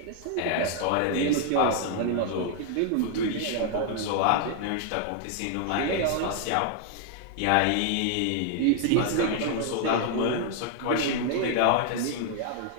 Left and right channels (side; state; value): both; different; correlation 0.00